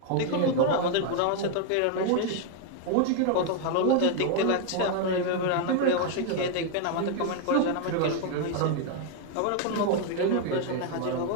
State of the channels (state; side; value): different; both; correlation 0.00